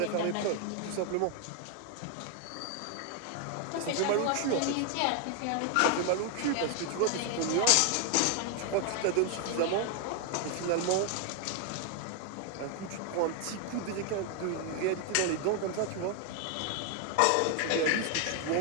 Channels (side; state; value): both; different; correlation 0.00